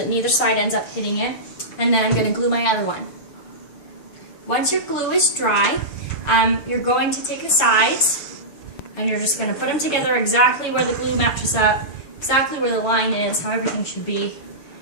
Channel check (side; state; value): right; late; 6.9 ms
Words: neither side ends up hitting it. And then I'm going to glue my other one. Once your glue is dry, you're going to take the sides and you're just going to put them together exactly where the glue matches up, exactly where the line is, how everything should be.